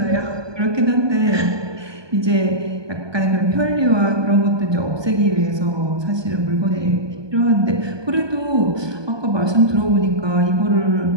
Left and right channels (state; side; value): late; left; 1.2 ms